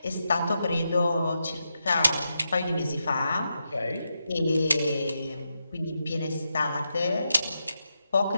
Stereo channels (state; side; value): inverted; both; correlation -0.86